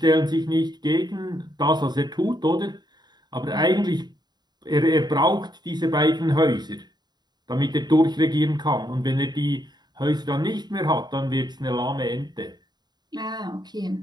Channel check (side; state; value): left; late; 0.20 ms